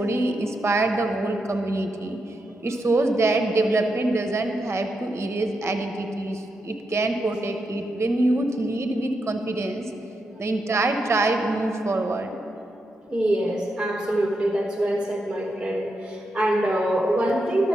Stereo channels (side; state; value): both; normal; correlation 0.84